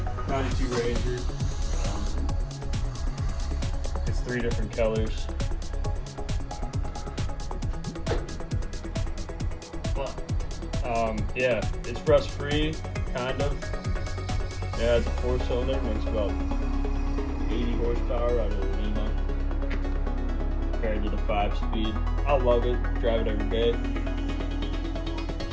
92 Ranger. It's 3 different colors. But, yeah, it's rust free, kind of. Yeah, it's a 4-cylinder, makes about 80 horsepower out of the Lima. Compared to the 5-speed. I love it, drive it every day.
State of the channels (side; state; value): both; identical; correlation 1.00